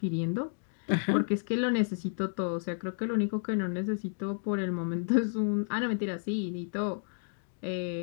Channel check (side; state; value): right; silent; digital silence